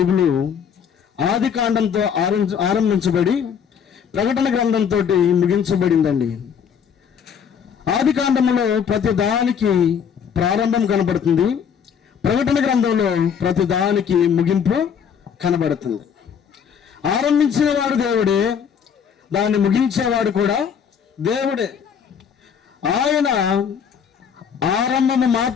ఆది కాండంతో ఆరంభించబడి ప్రకటన గ్రంథంతో ముగించబడిందండి. ఆది కాండములో ప్రతి దానికి ప్రారంభం కనబడుతుంది, ప్రకటన గ్రంథంలో ప్రతి దానికి ముగింపు కనబడుతుంది. ఆరంభించిన వాడు దేవుడే, దాన్ని ముగించేవాడు కూడా దేవుడే. ఆయన ఆరంభము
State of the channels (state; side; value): quieter; right; 7.4 dB